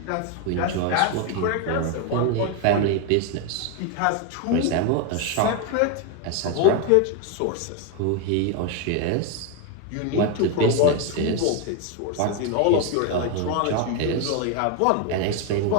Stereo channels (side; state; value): both; different; correlation 0.02